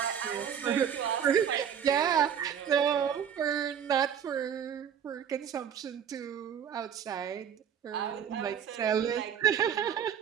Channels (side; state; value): left; quieter; 8.4 dB